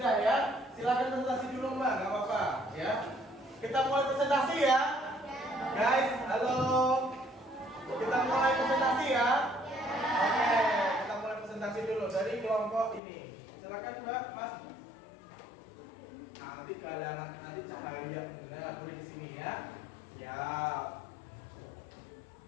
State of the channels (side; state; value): right; drops out; at 13.0 s